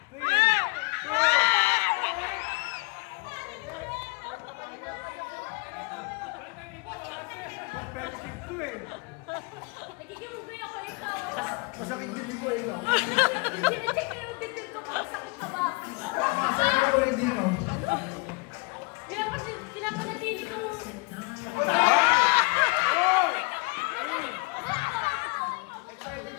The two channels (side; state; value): right; quieter; 28.0 dB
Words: Masakit din ko, ikaw. Sinicheck ko yung detail ko kung masakit ka ba. Masakit ko, hindi ikaw. Pinapanatili ko. Excited